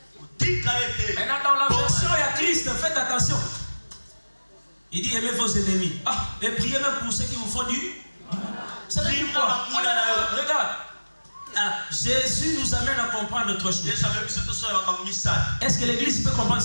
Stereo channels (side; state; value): both; inverted; correlation -1.00